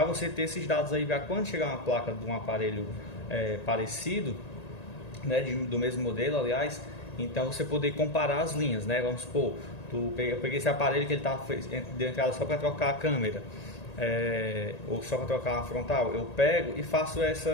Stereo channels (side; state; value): right; late; 1.9 ms